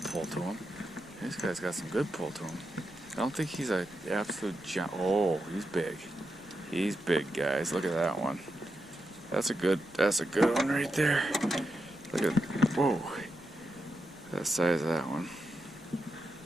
pull to him. This guy's got some good pull to him. I don't think he's an absolute giant. Oh, he's big. He's big, guys. Look at that one. That's a good one right there. Look at, whoa. That size of that one.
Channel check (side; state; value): left; noise; rumble, 26 dB below the sound